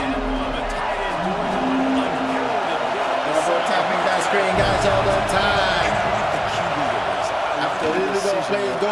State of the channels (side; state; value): both; identical; correlation 1.00